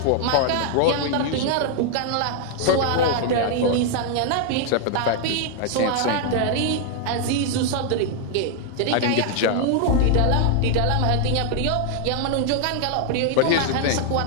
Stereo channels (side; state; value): both; different; correlation 0.00